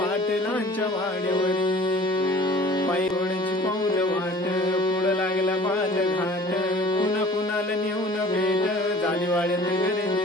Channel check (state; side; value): normal; both; correlation 0.47